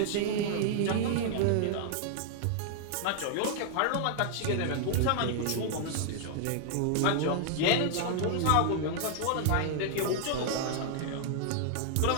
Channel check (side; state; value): both; different; correlation -0.01